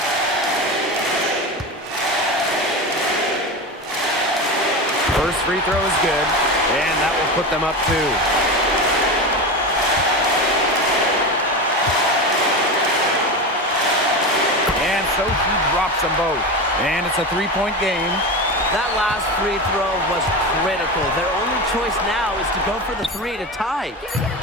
First free throw is good, and that will put them up 2. And so she drops them both. And it's a 3-point game. That last free throw was critical. Their only choice now is to go for the 3 to tie.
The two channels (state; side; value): normal; both; correlation 0.23